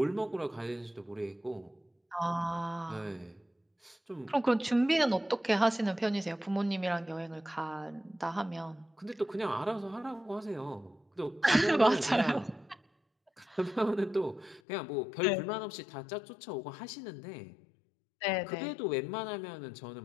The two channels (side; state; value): right; drops out; at 14.6 s